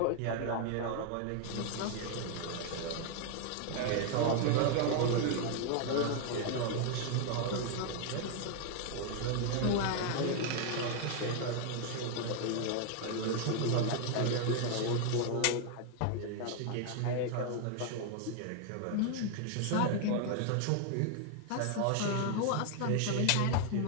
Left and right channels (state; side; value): different; both; correlation 0.00